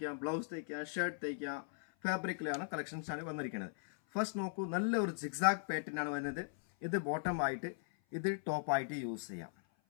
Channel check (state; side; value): silent; right; 52 dB below the other